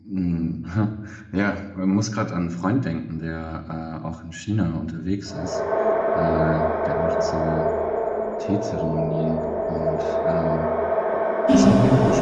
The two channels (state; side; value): identical; both; correlation 1.00